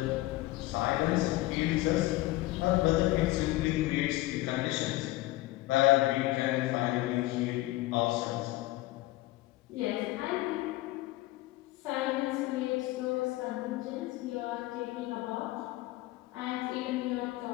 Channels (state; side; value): quieter; right; 18.4 dB